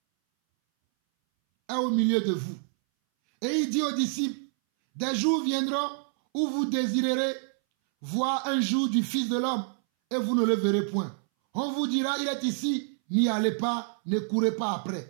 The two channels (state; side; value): silent; left; 60 dB below the other